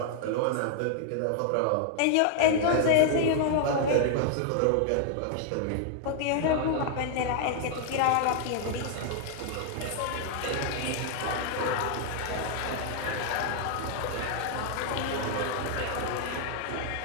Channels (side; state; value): both; different; correlation 0.00